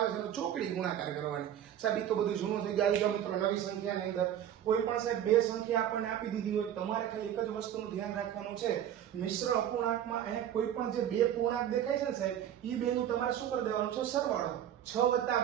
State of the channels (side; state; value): left; quieter; 10.4 dB